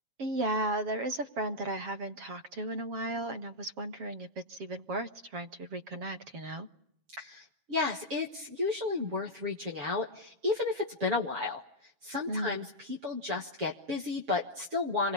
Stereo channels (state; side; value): late; left; 7.3 ms